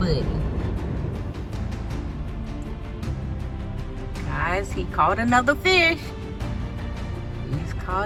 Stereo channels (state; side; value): identical; both; correlation 1.00